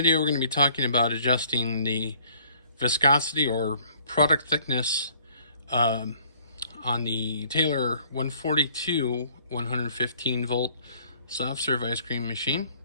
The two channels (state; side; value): inverted; both; correlation -0.58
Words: we're going to be talking about adjusting the viscosity or product thickness on the Taylor 142 115 volt soft serve ice cream machine.